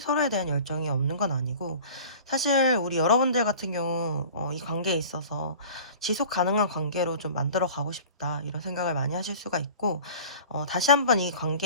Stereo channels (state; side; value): inverted; both; correlation -0.42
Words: 대한 열정이 없는 건 아니고 사실 우리 여러분들 같은 경우 이 관계에 있어서 지속 가능한 관계로 좀 만들어 가고 싶다 이런 생각을 많이 하실 수가 있고 다시 한번 이